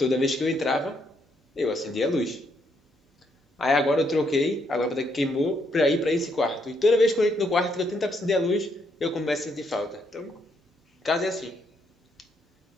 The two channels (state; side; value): normal; both; correlation 0.74